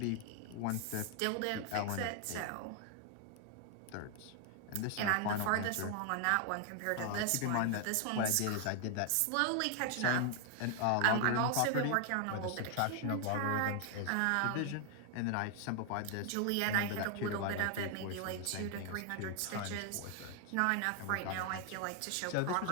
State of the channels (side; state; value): both; different; correlation 0.00